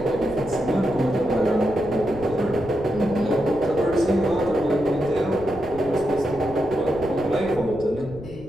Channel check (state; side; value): noise; left; rumble, 15 dB below the sound